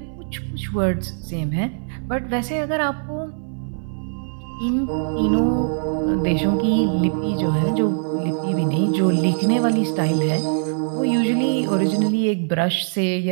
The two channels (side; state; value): left; silent; 64 dB below the other